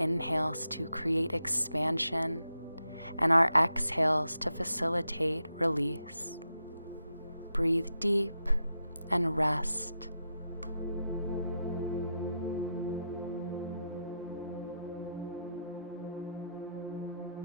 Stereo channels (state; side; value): inverted; both; correlation -0.85